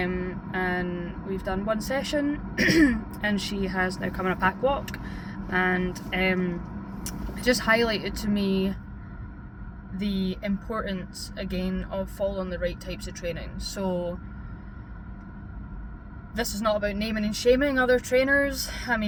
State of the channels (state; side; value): identical; both; correlation 1.00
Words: we've done one session and she has now come on a pack walk, and it just highlighted to me the importance again of following the right types of training. So this is not about naming and shaming other trainers. I